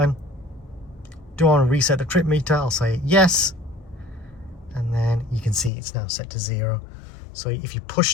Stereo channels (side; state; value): right; drops out; at 5.7 s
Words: Do I want to reset the trip meter? I'll say yes, and then you can see it's now set to 0. So if you